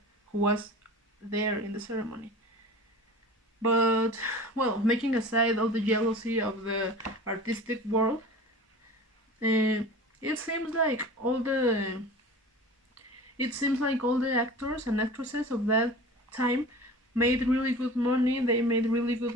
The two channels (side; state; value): both; normal; correlation 0.38